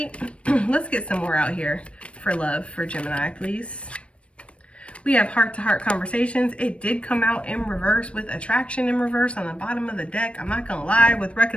Let's get some more out here for love for Gemini, please. We have heart-to-heart conversations. It did come out in reverse with attraction in reverse on the bottom of the deck. I'm not going to lie, with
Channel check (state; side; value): late; right; 0.061 ms